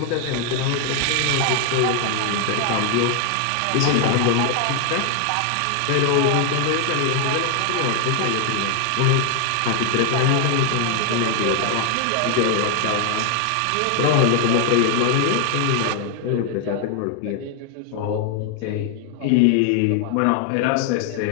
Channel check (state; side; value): different; both; correlation 0.00